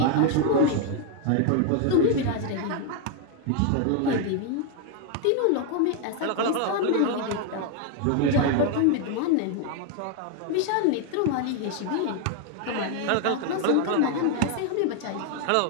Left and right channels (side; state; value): both; different; correlation 0.01